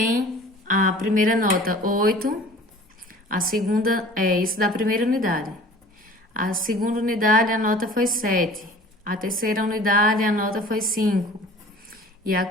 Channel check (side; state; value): both; normal; correlation 0.45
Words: a primeira nota 8, a segunda é isso da primeira unidade. A segunda unidade a nota foi 7. A terceira unidade a nota foi 5. E a